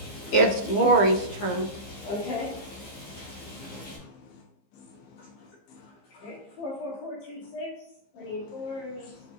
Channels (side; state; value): right; late; 15 ms